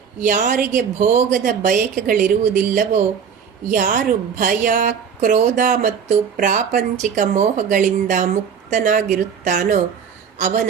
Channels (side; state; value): left; quieter; 7.1 dB